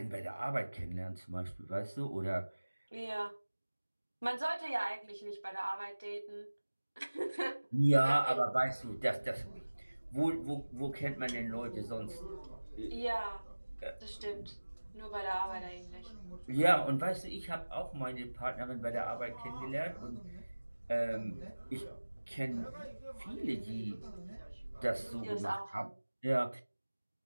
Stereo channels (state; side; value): inverted; both; correlation -1.00